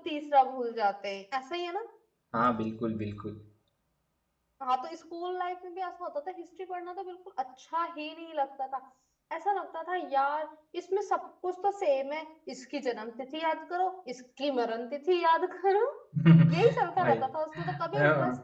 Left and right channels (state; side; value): identical; both; correlation 1.00